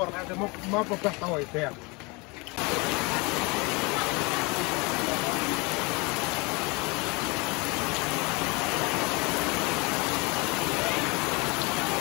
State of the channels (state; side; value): quieter; right; 27.3 dB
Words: mà có cái tỏi đẹp